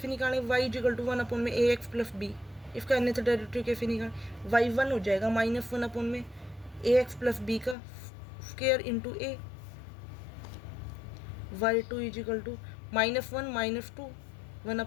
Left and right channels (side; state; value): right; drops out; at 7.8 s